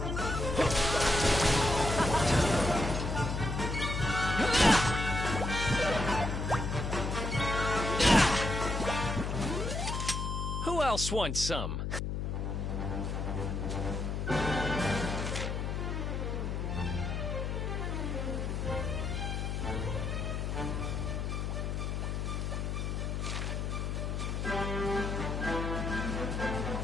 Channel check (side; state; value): left; noise; hum, 2 dB below the sound